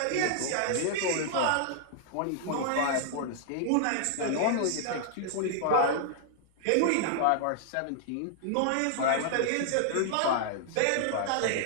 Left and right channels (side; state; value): both; different; correlation -0.01